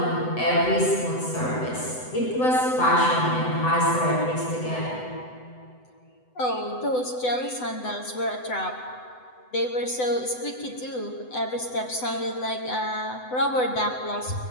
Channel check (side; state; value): right; late; 7.9 ms